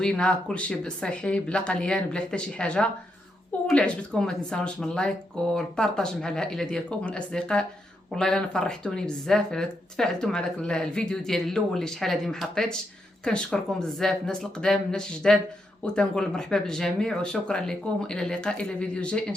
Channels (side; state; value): both; normal; correlation 0.81